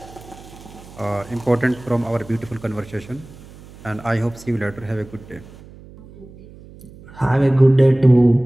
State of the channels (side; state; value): right; noise; hum, 20 dB below the sound